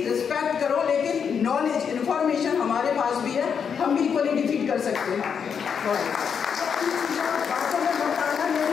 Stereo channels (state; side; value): quieter; right; 6.9 dB